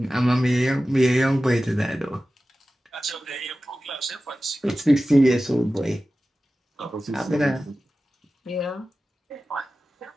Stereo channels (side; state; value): both; normal; correlation 0.95